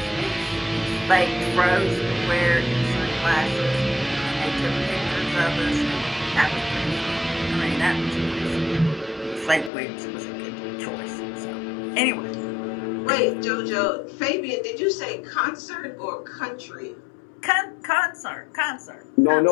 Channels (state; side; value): drops out; right; at 9.7 s